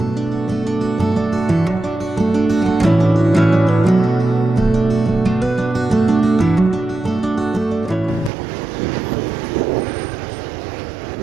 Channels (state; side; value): drops out; left; at 8.3 s